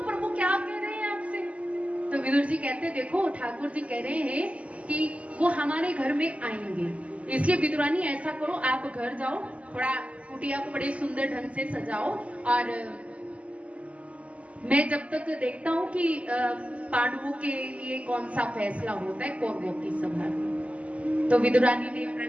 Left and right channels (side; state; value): left; late; 0.065 ms